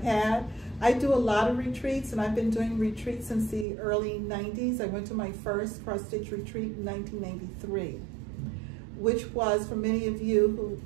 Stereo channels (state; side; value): drops out; left; at 3.7 s